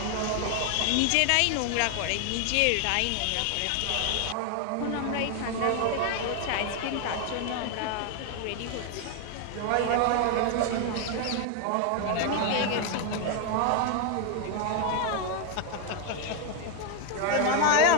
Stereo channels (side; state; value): both; different; correlation 0.01